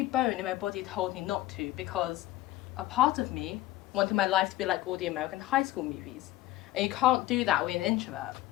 bone in my body told me not to, because a part of me wanted my life to be like all the American high school movies. And you can't do that with an introvert,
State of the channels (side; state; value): right; quieter; 15.8 dB